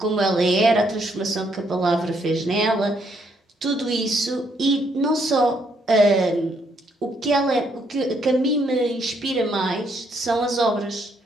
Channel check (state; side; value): normal; both; correlation 0.72